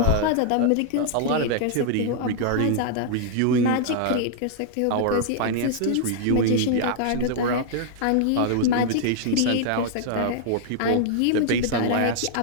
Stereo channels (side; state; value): both; different; correlation -0.01